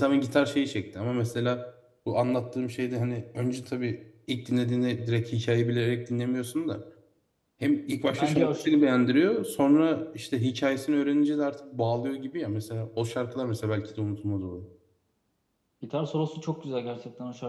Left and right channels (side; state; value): both; identical; correlation 1.00